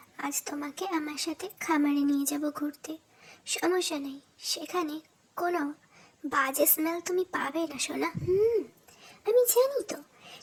আজ তোমাকে আমার সাথে খামারে নিয়ে যাব ঘুরতে। সমস্যা নেই, সেখানে কোনো বাজে স্মেল তুমি পাবে না সোনা। আমি জানি তো,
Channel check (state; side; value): identical; both; correlation 1.00